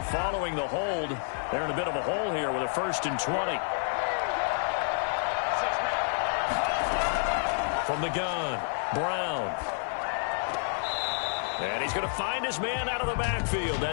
following the hold, they're in a bit of a hole here with a 1st and 20. From the gun, Brown. And he's going to find his man out of the backfield.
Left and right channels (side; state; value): right; silent; digital silence